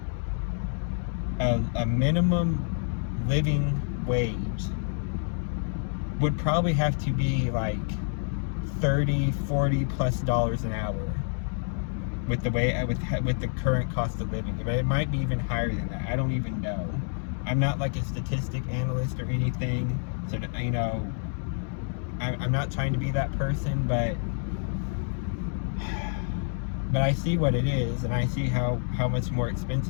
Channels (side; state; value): right; silent; 59 dB below the other